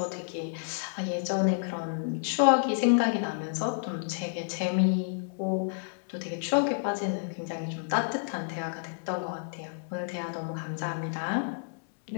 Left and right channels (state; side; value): silent; right; digital silence